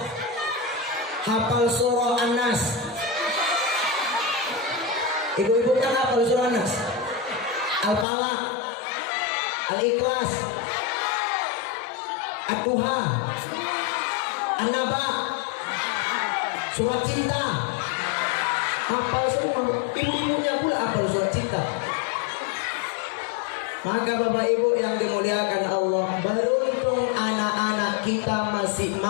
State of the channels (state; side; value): drops out; right; at 8.1 s